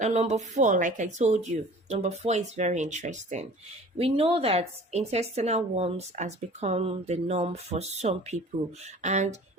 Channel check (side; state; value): both; normal; correlation 0.46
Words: number four, like I told you, number four is very interesting. We know that intestinal worms has become the norm for some people, and